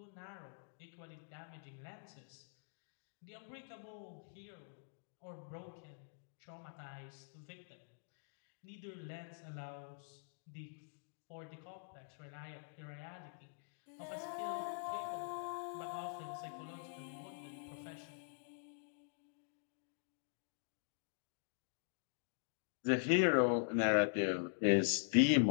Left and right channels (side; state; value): right; silent; digital silence